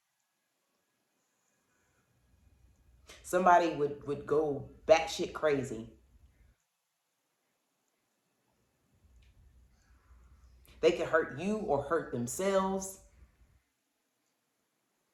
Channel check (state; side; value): identical; both; correlation 1.00